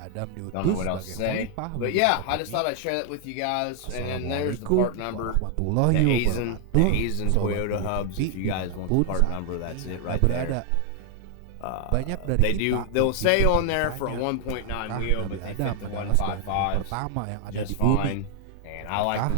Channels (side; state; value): both; different; correlation 0.00